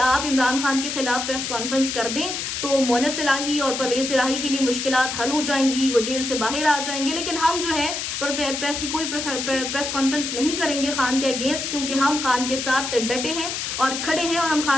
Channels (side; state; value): left; noise; hiss, 4 dB below the sound